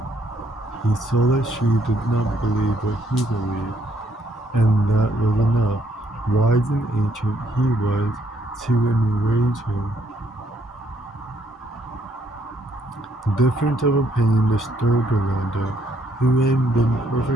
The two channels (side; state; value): both; normal; correlation 0.70